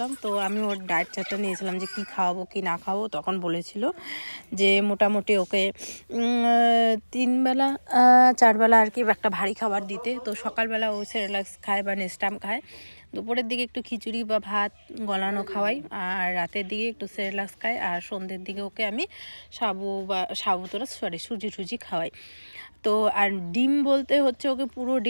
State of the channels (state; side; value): inverted; both; correlation -1.00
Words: তো আমি ওর ডায়েট চার্টটা নিয়েছিলাম যে কি খাওয়াবো কি না খাওয়াবো। তখন বলেছিল যে মোটামুটি ওকে 3 বেলা 4 বেলা আর কি একটা ভারী খাবার দিতে। তো সকালবেলা ও সেরেলাক্স খায় বা নেস্টাম খায়, দুপুরের দিকে একটু খিচুড়ি বা ভাত গলানো খাওয়াই, আর রাতের দিকে একটু সেরেলাক্স খায়, আর সন্ধ্যের দিকে ওকে আমি সুজি খাওয়াই। তো আর ডিম বলতে হচ্ছে ওকে পুরো